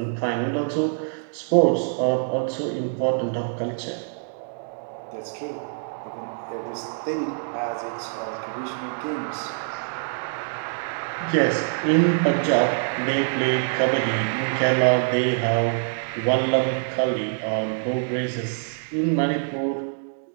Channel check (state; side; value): silent; left; digital silence